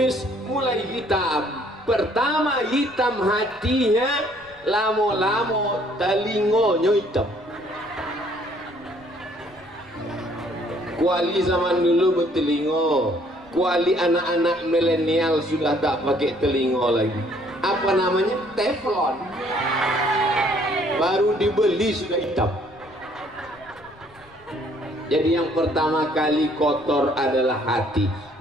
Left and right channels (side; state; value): left; noise; rumble, 27 dB below the sound